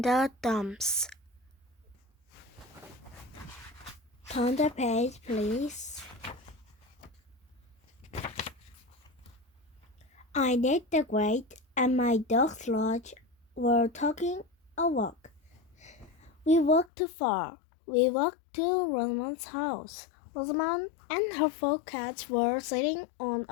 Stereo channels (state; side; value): drops out; right; at 16.9 s